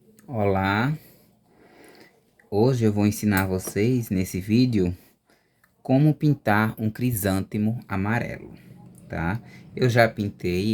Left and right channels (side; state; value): both; identical; correlation 1.00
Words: Olá, hoje eu vou ensinar vocês nesse vídeo como pintar um crisântemo amarelo, tá? Eu já